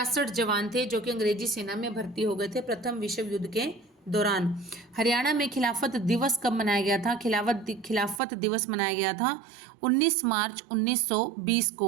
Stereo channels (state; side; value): drops out; left; at 8.2 s